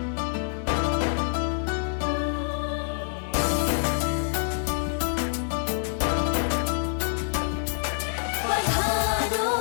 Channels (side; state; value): right; silent; 57 dB below the other